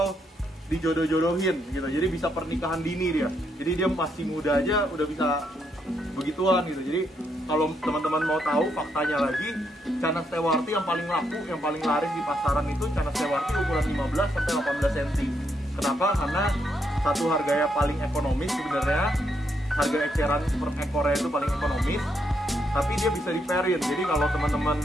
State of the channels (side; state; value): both; normal; correlation 0.77